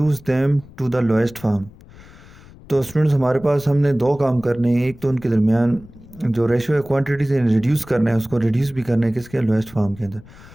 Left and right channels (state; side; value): noise; left; rumble, 21 dB below the sound